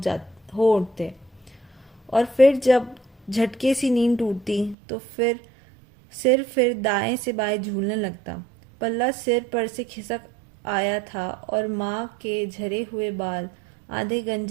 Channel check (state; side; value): drops out; left; at 4.8 s